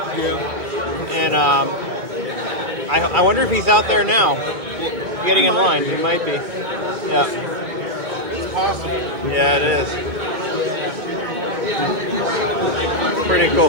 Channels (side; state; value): left; late; 2.2 ms